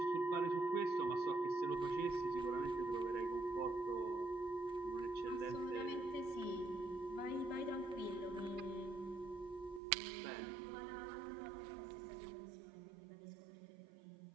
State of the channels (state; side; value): drops out; left; at 9.8 s